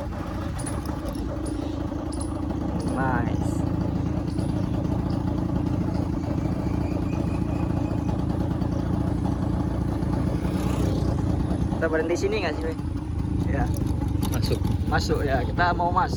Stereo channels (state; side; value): identical; both; correlation 1.00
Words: Nice. Kita berhenti sini nggak sih? Ya. Masuk ya. Kita mau